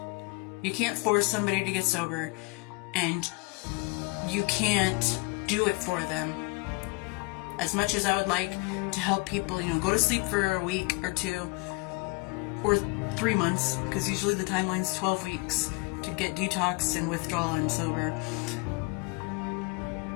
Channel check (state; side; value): quieter; right; 27.8 dB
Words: You can't force somebody to get sober, and you can't do it for them. As much as I would like to help people, go to sleep for a week or two, or 3 months, because usually the timeline's 12 weeks to get detox and withdrawal and sober.